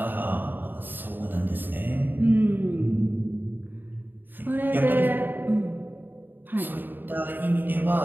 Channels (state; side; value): late; left; 0.092 ms